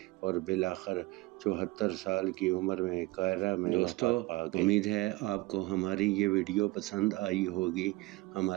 اور بالآخر 74 سال کی عمر میں قاہرہ میں وفات پا گئے۔ امید ہے آپ کو ہماری یہ ویڈیو پسند آئی ہوگی۔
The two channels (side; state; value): left; quieter; 21.4 dB